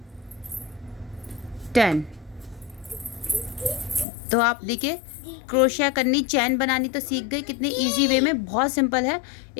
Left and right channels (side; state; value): right; drops out; at 4.0 s